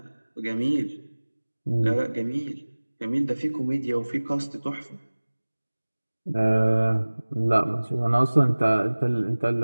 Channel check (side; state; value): both; inverted; correlation -1.00